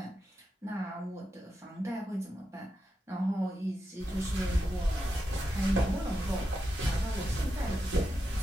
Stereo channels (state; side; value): normal; both; correlation 0.87